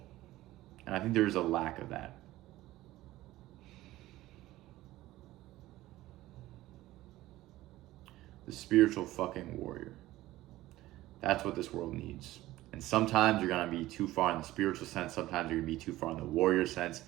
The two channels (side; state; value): left; quieter; 16.5 dB